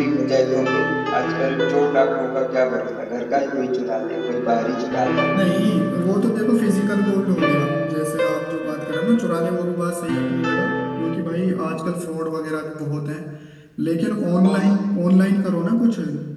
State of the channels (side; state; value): both; identical; correlation 1.00